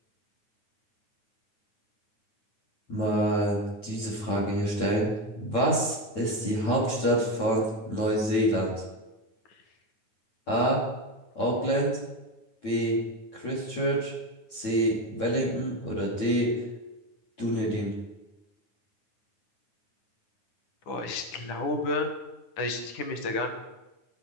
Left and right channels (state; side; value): late; right; 9.0 ms